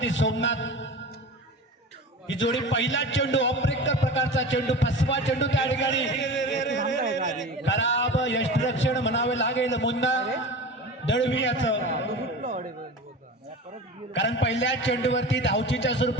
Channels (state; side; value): normal; both; correlation 0.33